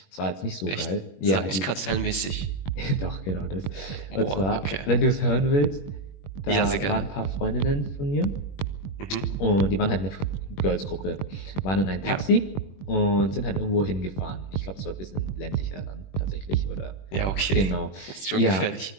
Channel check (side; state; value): right; late; 21 ms